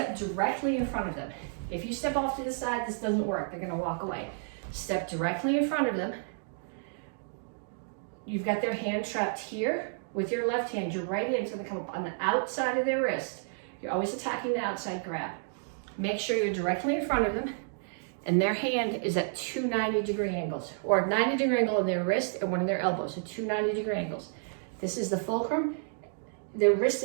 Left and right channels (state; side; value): silent; left; digital silence